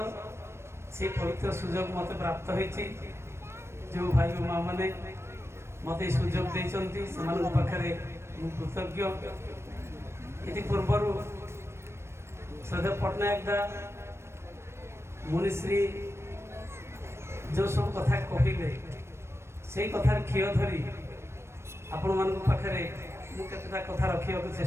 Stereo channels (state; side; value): late; left; 0.13 ms